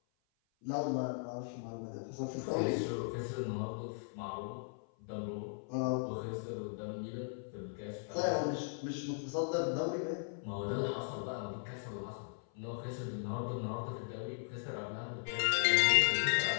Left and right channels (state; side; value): silent; right; 53 dB below the other